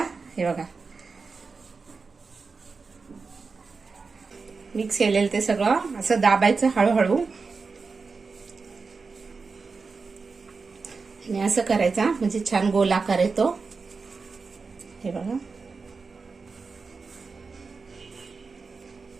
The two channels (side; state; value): left; quieter; 4.6 dB